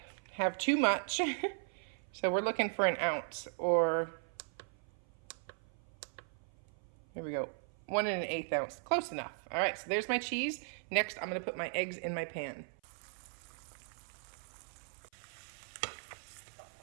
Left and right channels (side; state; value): left; silent; 52 dB below the other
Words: have too much. So we're looking for 1 ounce, or here we go, 1 1/8 ounce, close enough. All right, so there's my cheese. Next, I'm gonna put my eggs in my pan.